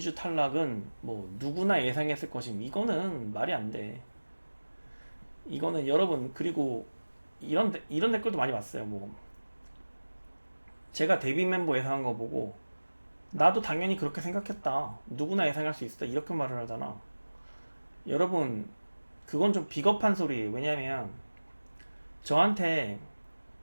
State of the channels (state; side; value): inverted; both; correlation -1.00